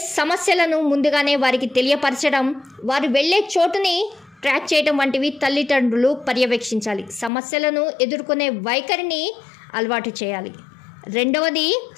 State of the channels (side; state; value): right; drops out; at 7.3 s